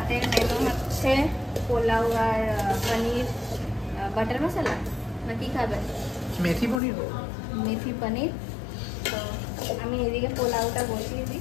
মেনু হচ্ছে পোলাও আর পনির বাটার মশলা, না কি খাবেন? মেথি পনির। মেথি পনির। তো আমি এদিকে পোলাওটা বসিয়ে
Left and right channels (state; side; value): drops out; right; at 6.8 s